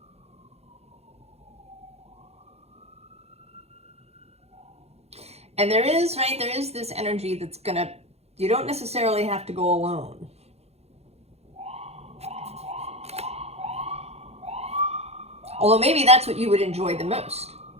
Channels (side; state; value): left; late; 0.30 ms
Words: And there is, right, there is this energy that's gonna, you don't necessarily have to go alone. Although maybe that's what you would enjoy the most,